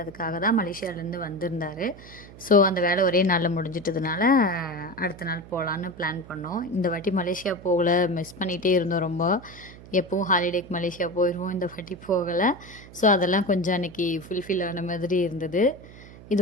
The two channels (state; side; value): noise; right; hum, 19 dB below the sound